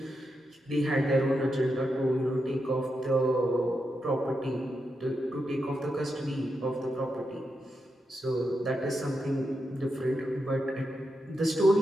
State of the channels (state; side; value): normal; both; correlation 0.86